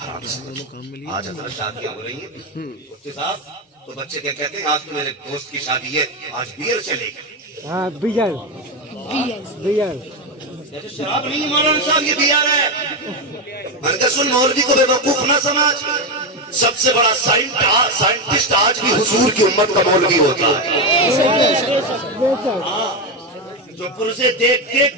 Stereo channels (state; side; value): normal; both; correlation 0.11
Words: حرام سے بچو. آج حضرت شادیاں ہو رہی ہیں مفتی صاحب, تو بچے کیا کہتے ہیں آج تو میرے دوست کی شادی ہے, آج بیئر چلے گی. ہاں بیئر, شراب نہیں مولانا صاحب, یہ بیئر ہے. میں نے کہا سن مولوی کو بے وقوف نہ سمجھ. سب سے بڑا سائنٹسٹ آج بھی حضور کی امت کا مولوی ہوتا ہے. جو پرزے